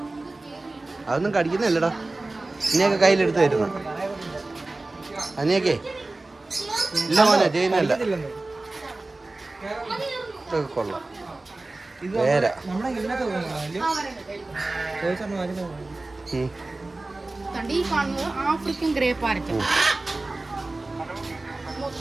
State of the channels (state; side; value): quieter; left; 3.1 dB